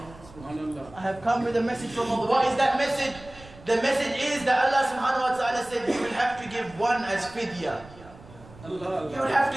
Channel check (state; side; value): noise; right; rumble, 20 dB below the sound